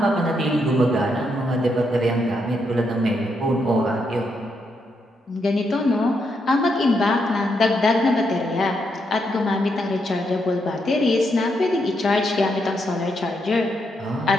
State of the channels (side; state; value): both; normal; correlation 0.79